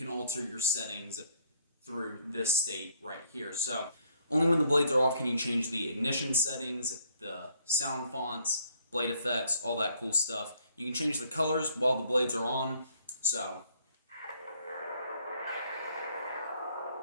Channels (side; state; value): both; inverted; correlation -0.66